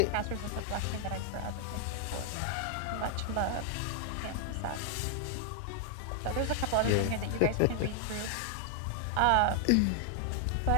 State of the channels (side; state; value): both; different; correlation 0.00